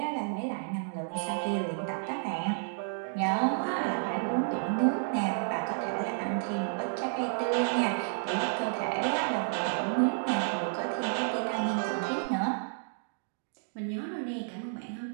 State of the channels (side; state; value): left; silent; digital silence